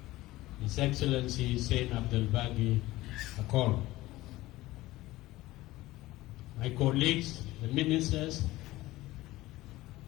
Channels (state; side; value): quieter; right; 17.8 dB